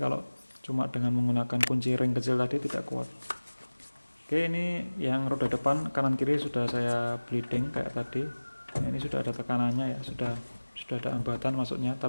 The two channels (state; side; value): inverted; both; correlation -1.00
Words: cuma dengan menggunakan kunci ring kecil tadi tidak kuat. Oke, ini yang roda depan kanan kiri sudah saya bleeding kayak tadi. Nah, ini sudah ada tekanannya ya, sudah ada hambatan masuknya,